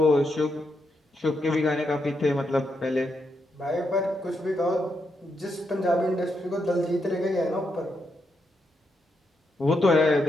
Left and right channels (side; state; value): both; normal; correlation 0.82